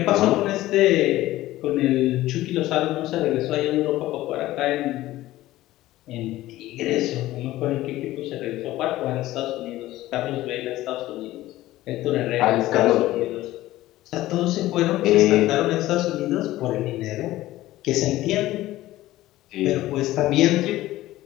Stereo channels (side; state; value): right; quieter; 16.1 dB